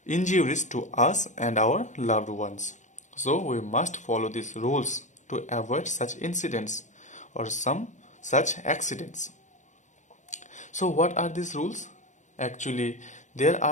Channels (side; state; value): right; late; 0.35 ms